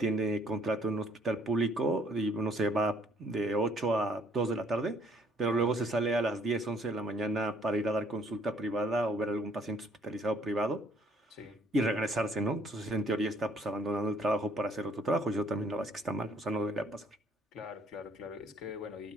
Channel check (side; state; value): both; normal; correlation 0.63